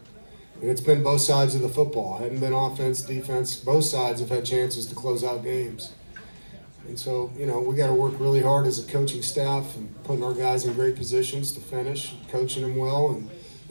And it's been both sides of the football. It hadn't been offense, defense. Both sides have had chances to close out games. And so, you know, we got to work really hard as a coaching staff and putting our guys in great positions to finish, coaching them well, and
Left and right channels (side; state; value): both; inverted; correlation -1.00